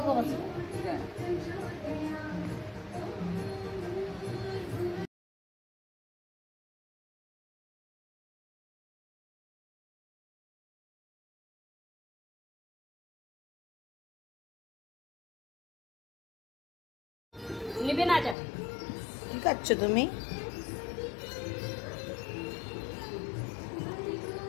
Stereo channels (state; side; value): drops out; right; at 18.4 s